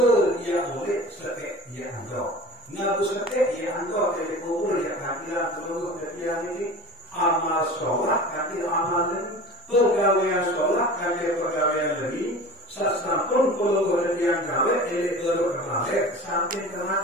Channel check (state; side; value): normal; both; correlation 0.37